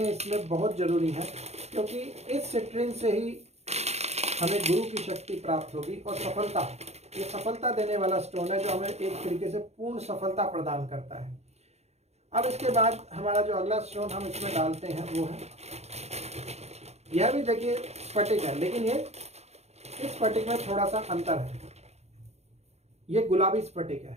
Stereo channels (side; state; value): left; late; 0.31 ms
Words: इसमें बहुत ज़रूरी है, क्योंकि इस सिट्रेन से ही हमें गुरु की शक्ति प्राप्त होगी और सफलता, ये सफलता देने वाला स्टोन है जो हमें एक तरीके से पूर्ण सफलता प्रदान करता है। अब इसके बाद हमारा जो अगला स्टोन हम इसमें डालते हैं वो है, यह भी देखिए स्फटिक है, लेकिन ये इस स्फटिक में थोड़ा सा अंतर है। ये गुलाबी स्फटिक है।